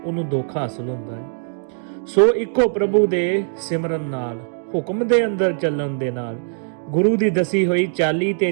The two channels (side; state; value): left; silent; digital silence